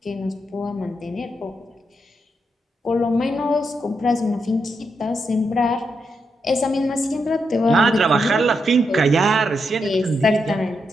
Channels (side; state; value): both; normal; correlation 0.82